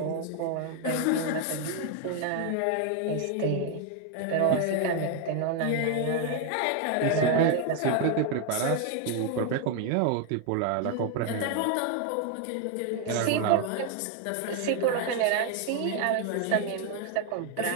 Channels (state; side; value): different; both; correlation 0.01